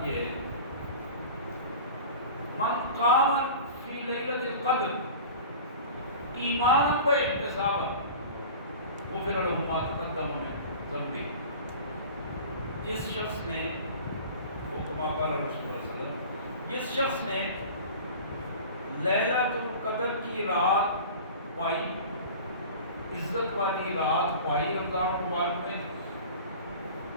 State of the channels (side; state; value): both; inverted; correlation -0.38